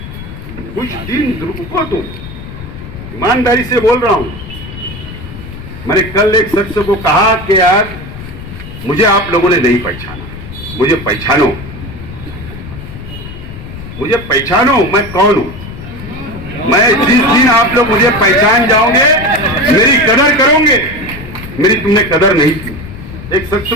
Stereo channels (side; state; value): left; noise; rumble, 12 dB below the sound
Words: कुछ दिन रुको, तुम ईमानदारी से बोल रहा हूं। मैंने कल एक शख्स को कहा कि यार मुझे आप लोगों ने नहीं पहचाना, मुझे पहचानो, मुझे पहचानो, मैं कौन हूं। मैं जिस दिन आप लोग मुझे पहचान जाओगे, मेरी कदर करोगे। मेरी तुमने कदर नहीं की। एक शख्स